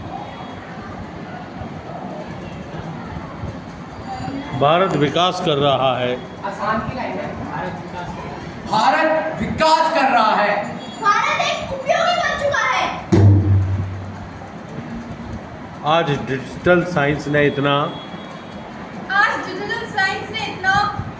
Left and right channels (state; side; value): identical; both; correlation 1.00